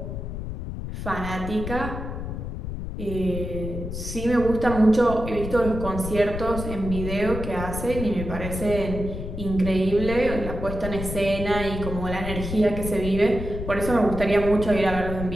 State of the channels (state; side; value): noise; left; rumble, 6 dB below the sound